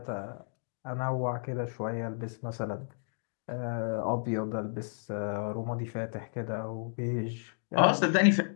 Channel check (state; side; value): silent; right; digital silence